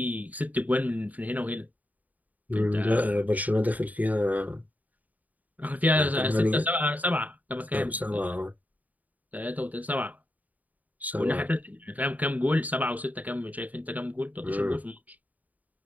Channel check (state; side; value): late; left; 0.077 ms